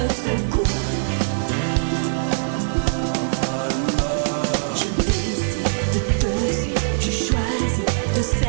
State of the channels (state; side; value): silent; left; digital silence